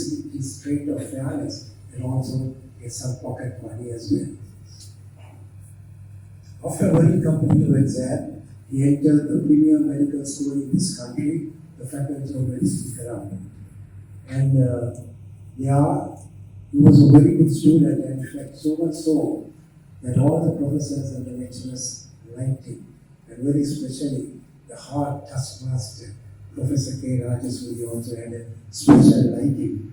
his trait of fairness and also get some pocket money as well. After a very competitive exam, he entered the premier medical school in this country, the Faculty of Medicine, Karam. And he was a very good student, and in fact, so much so that all the professors and the lecturers liked him, and very especially the hard taskmaster, Professor K. Rajaswari, also had a special liking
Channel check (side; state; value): both; identical; correlation 1.00